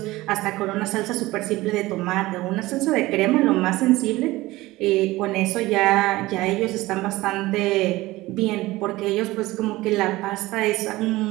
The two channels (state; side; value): quieter; left; 18.9 dB